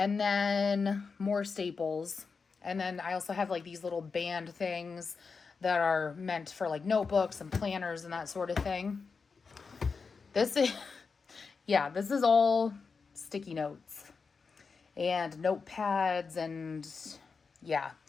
then more staples. And then I also have like these little band things that are meant for like notebooks and planners and that sort of thing. This is, yeah, this is all sticky notes and notepads and yeah.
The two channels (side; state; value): right; quieter; 5.0 dB